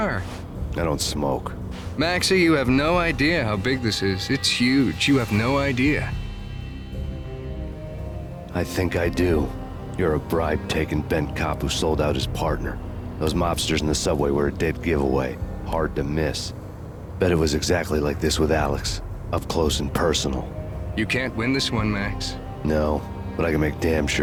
I don't smoke. Maxie, you have no idea how big this is. It's huge. You have no idea. I think I do. You're a bribe-taking bent cop who sold out his partner. Those mobsters in the subway were a dead giveaway. Hard to miss. Bet it was exactly like this with Alex. Up close and personal. You can't win this one, Max. No, but I can make damn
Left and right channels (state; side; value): identical; both; correlation 1.00